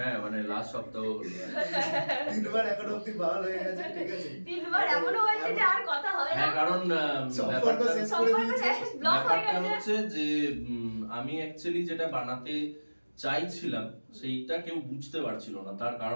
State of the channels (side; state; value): both; inverted; correlation -1.00